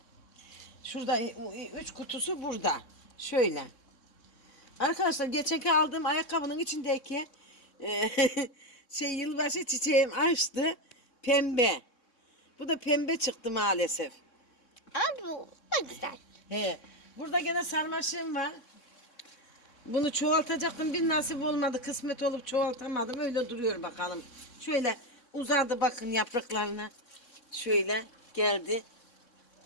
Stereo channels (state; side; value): late; right; 3.6 ms